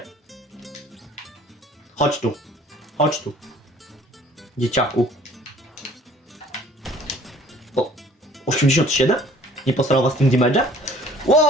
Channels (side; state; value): both; normal; correlation 0.53